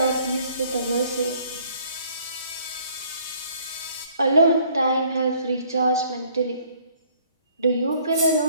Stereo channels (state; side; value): inverted; both; correlation -0.60